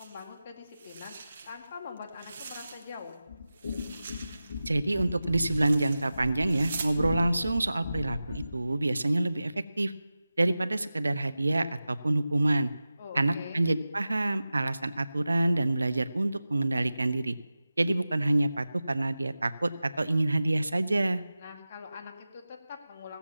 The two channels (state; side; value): inverted; both; correlation -0.95